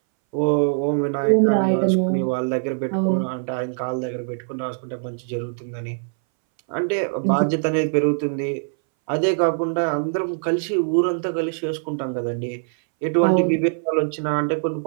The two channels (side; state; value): left; silent; 62 dB below the other